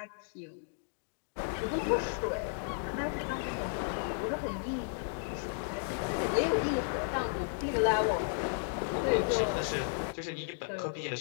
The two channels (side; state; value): right; silent; digital silence